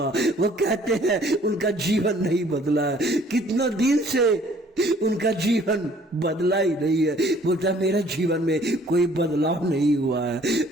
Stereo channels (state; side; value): normal; both; correlation 0.57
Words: वो कहते हैं उनका जीवन नहीं बदला है, कितना दिन से उनका जीवन बदला ही नहीं है। बोलता मेरे जीवन में कोई बदलाव नहीं हुआ है,